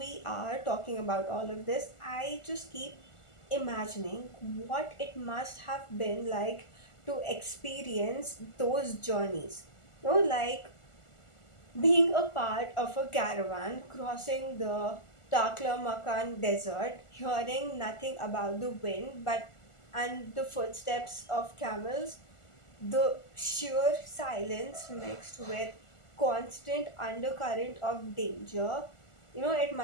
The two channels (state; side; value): late; right; 1.4 ms